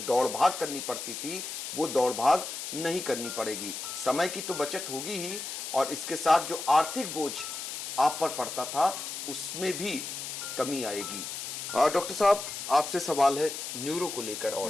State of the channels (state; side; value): noise; left; hiss, 6 dB below the sound